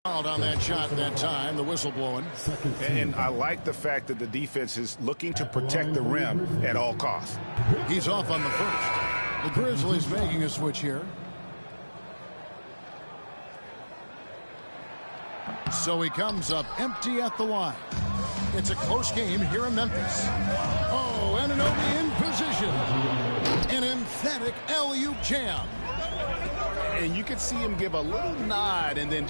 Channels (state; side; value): inverted; both; correlation -1.00